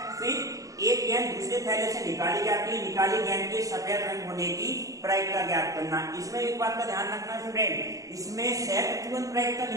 फिर एक गेंद दूसरे थैले से निकाली जाती है, निकाली गेंद के सफेद रंग होने की प्रायिकता ज्ञात करना। इसमें एक बात का ध्यान रखना स्टूडेंट, इसमें सहप्रतिबंध प्रायिकता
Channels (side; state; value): left; late; 0.16 ms